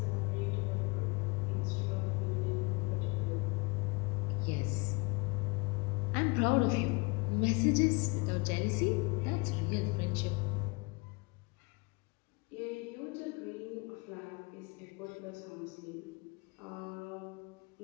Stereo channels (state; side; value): quieter; right; 28.3 dB